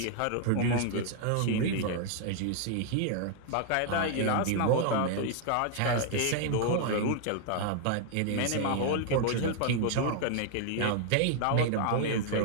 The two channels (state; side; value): different; both; correlation 0.00